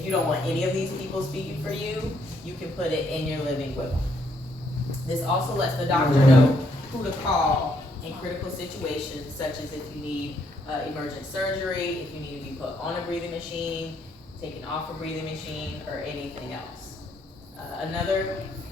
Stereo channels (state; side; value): normal; both; correlation 0.72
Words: you don't want any of these people speaking for you, you can put it in your living will. This also lets the doctor know who to call in critical situations, such as if you need emergent surgery, if you need to be put on a breathing machine, taken off a breathing machine, or anything else. Another